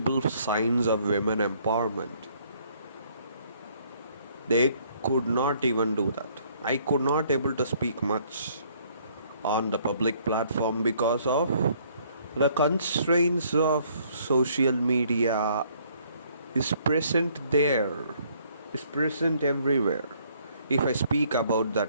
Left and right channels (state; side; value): inverted; both; correlation -0.64